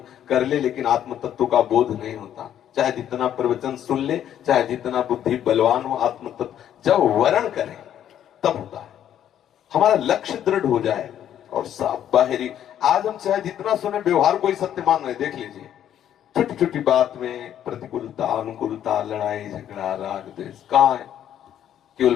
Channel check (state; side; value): quieter; right; 10.5 dB